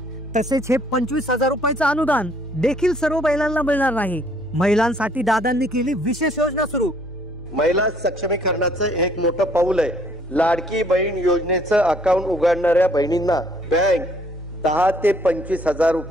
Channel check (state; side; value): normal; both; correlation 0.63